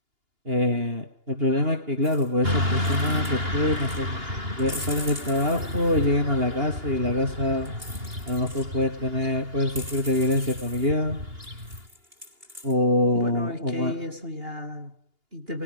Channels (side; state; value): left; late; 2.8 ms